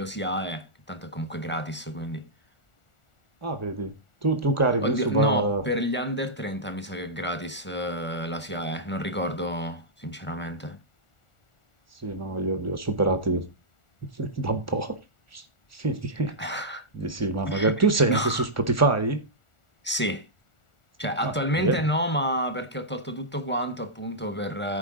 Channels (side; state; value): right; late; 1.4 ms